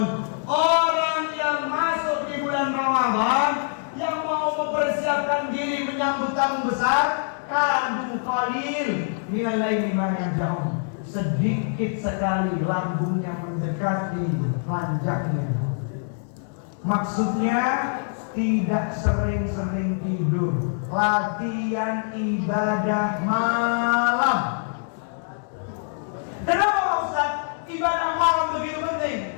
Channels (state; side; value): silent; right; 62 dB below the other